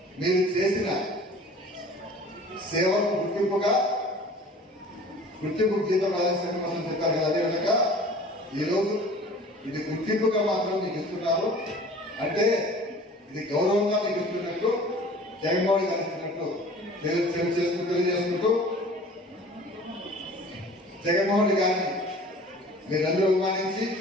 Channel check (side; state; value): both; normal; correlation 0.45